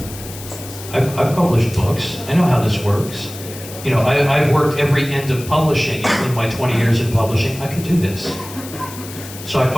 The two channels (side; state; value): left; noise; hiss, 14 dB below the sound